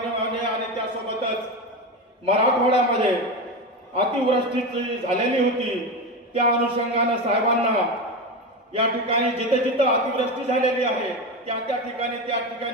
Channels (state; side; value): normal; both; correlation 0.19